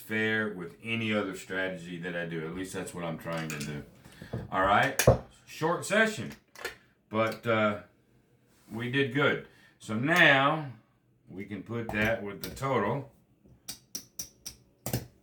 with any other strategy that I do. At least that's what I'm trying to do. All right? Short session. But we did good. So now we can put that with the total.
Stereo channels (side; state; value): both; identical; correlation 1.00